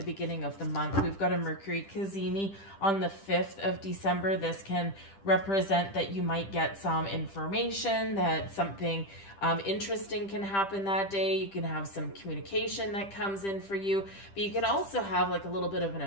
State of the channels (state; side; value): late; right; 10 ms